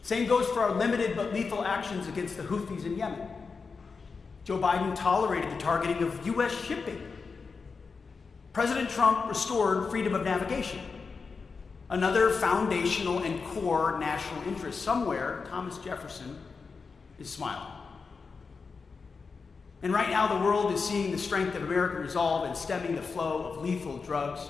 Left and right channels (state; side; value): quieter; right; 4.9 dB